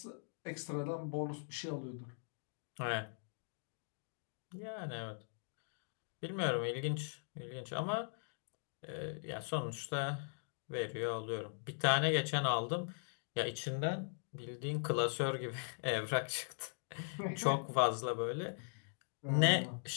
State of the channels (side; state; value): right; silent; digital silence